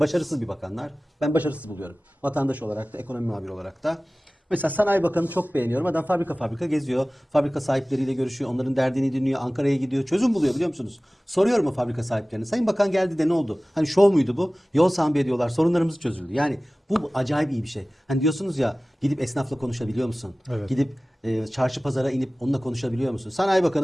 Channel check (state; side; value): normal; both; correlation 0.98